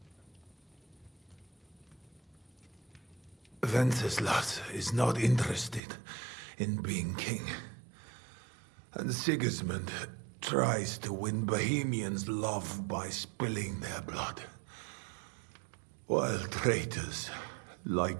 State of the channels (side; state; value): left; drops out; at 5.8 s